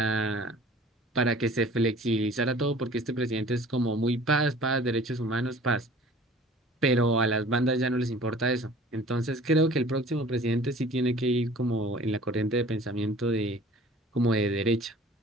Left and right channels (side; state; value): both; normal; correlation 0.47